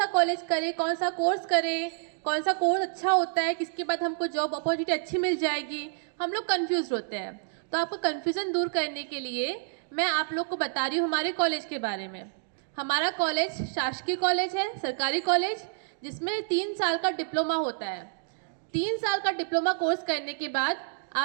कॉलेज करें, कौन सा कोर्स करें, कौन सा कोर्स अच्छा होता है, किसके बाद हमको जॉब अपॉर्चुनिटी अच्छी मिल जाएगी, हम लोग कंफ्यूज होते हैं। तो आपको कन्फ्यूज़न दूर करने के लिए मैं आप लोग को बता रही हूँ हमारे कॉलेज के बारे में। हमारा कॉलेज शासकीय कॉलेज है, सरकारी कॉलेज, जिसमें 3 साल का डिप्लोमा होता है। 3 साल का डिप्लोमा कोर्स करने के बाद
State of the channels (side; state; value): left; silent; digital silence